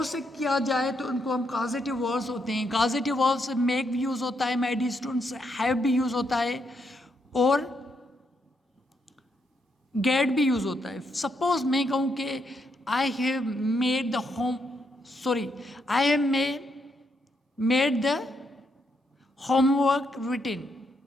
से किया जाए तो उनको हम causative verbs होते हैं. Causative verbs make भी यूज़ होता है, my dear students, have भी यूज़ होता है और get भी यूज़ होता है. Suppose मैं कहूँ कि I have made the I have made the homework written.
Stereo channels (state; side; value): normal; both; correlation 0.78